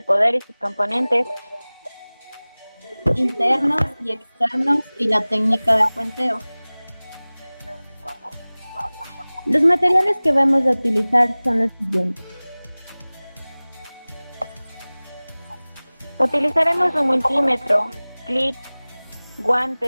poder y sus componentes, internos y externos y la técnica de puenteo. los materiales que vamos a utilizar son los siguientes. utilizaremos un multímetro, clips,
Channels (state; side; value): inverted; both; correlation -1.00